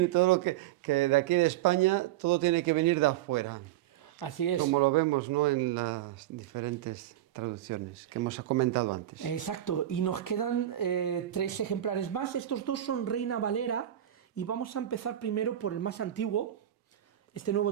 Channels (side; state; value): left; quieter; 12.8 dB